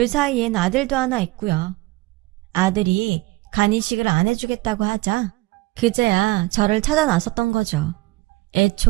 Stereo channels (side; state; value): left; quieter; 21.2 dB